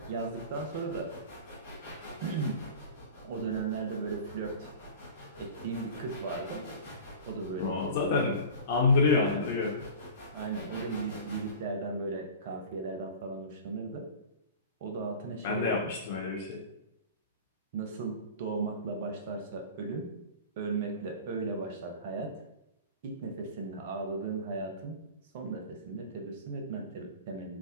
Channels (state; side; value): inverted; both; correlation -0.37